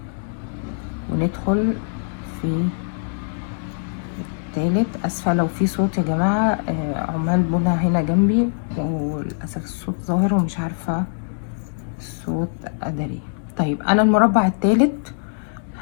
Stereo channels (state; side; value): silent; right; digital silence